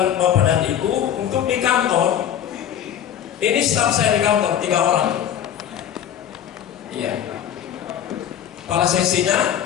Bapak dan Ibu untuk di kantor. Ini staf saya di kantor 3 orang. Iya. Kepala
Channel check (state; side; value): quieter; right; 9.9 dB